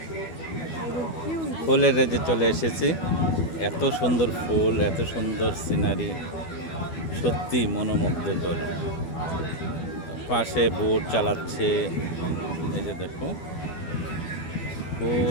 ফুলের রাজ্যে চলে এসেছি। এত সুন্দর ফুল, এত সুন্দর সিনারি, সত্যি মনোমুগ্ধকর। পাশে বোট চালাচ্ছে, এই যে দেখো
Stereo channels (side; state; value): right; late; 12 ms